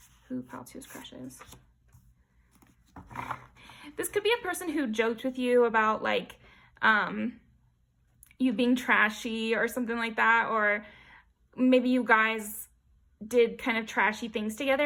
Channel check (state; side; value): identical; both; correlation 1.00